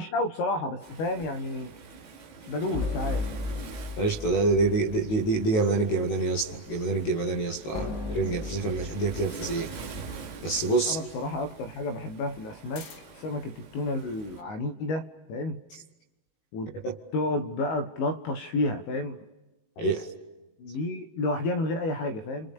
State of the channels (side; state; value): right; late; 19 ms